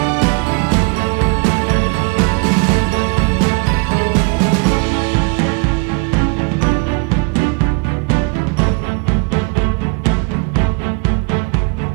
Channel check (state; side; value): quieter; left; 32.4 dB